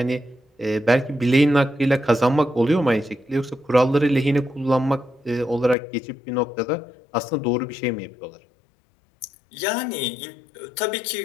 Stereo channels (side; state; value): right; drops out; at 5.8 s